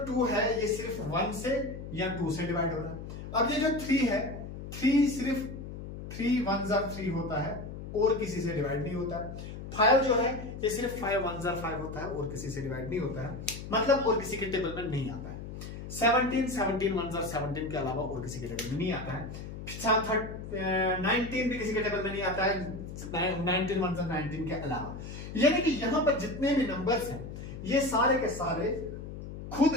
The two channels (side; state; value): left; noise; hum, 10 dB below the sound